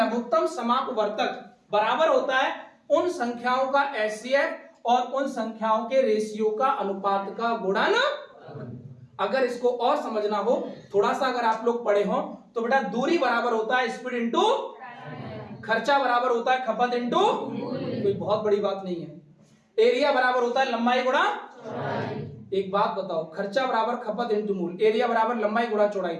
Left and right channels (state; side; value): identical; both; correlation 1.00